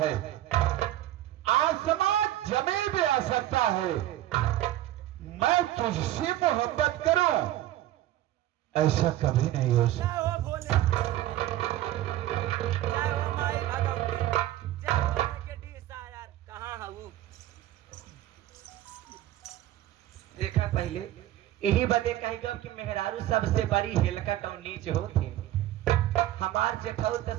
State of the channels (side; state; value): left; quieter; 14.1 dB